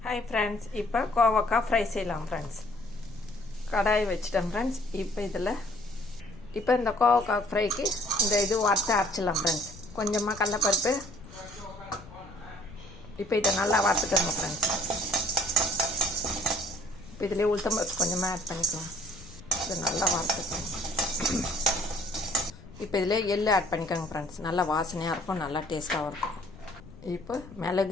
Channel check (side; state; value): left; noise; rumble, 18 dB below the sound